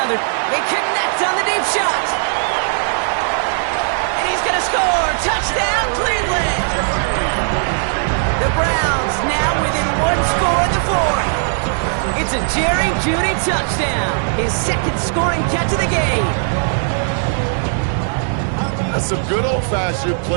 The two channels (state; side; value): silent; left; 64 dB below the other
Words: They connect on the deep shot. And he's going to score. Touchdown, Cleveland. The Browns now within 1 score in the fourth. It's a Jerry Jeudy touchdown. His second scoring catch of the game. That's some good old-fashioned